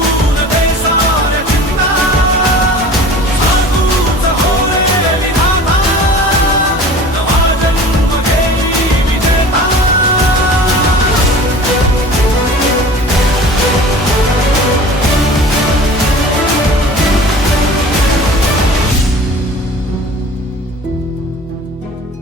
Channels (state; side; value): normal; both; correlation 0.41